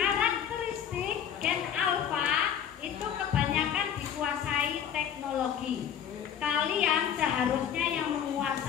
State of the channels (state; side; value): quieter; right; 8.9 dB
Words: gen alpha itu kebanyakan dikuasai teknologi. Kalian seharusnya yang